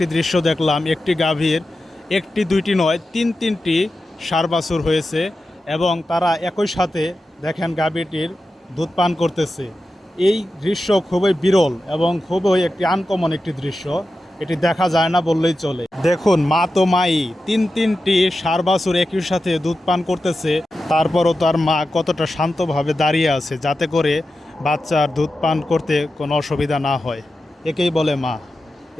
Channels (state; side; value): normal; both; correlation 0.92